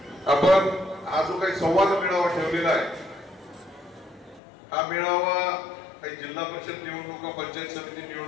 आपण हा जो काही संवाद मेळावा ठेवलेला आहे, हा मेळावा काही जिल्हा परिषद निवडणुका, पंचायत समिती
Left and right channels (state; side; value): drops out; right; at 4.4 s